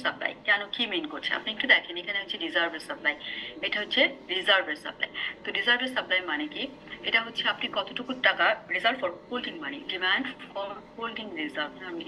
সাপ্লাই, কেন, কি মিন করছে আপনি একটু দেখেন। এখানে হচ্ছে রিজার্ভের সাপ্লাই, এটা হচ্ছে রিজার্ভের সাপ্লাই। তো রিজার্ভের সাপ্লাই মানে কি, এটা হচ্ছে আপনি কতটুকু টাকা reserve for holding money, demand for holding reserve, আমি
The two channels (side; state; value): both; identical; correlation 1.00